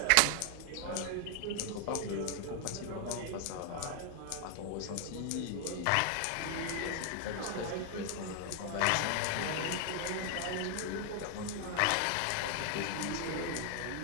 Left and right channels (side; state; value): both; different; correlation 0.00